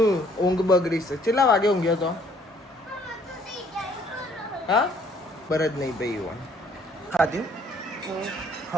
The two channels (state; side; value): normal; both; correlation 0.62